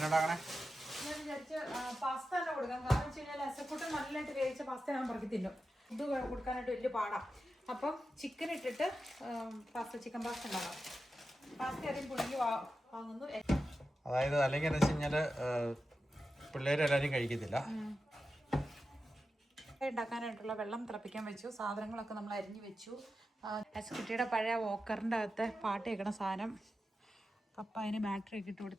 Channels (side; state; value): both; normal; correlation 0.91